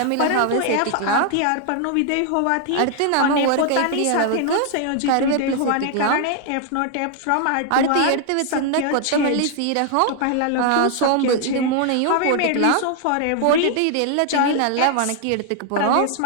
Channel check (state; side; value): different; both; correlation 0.00